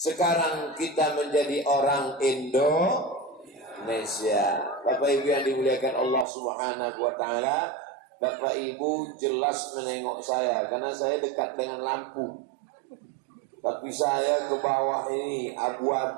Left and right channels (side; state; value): left; drops out; at 6.2 s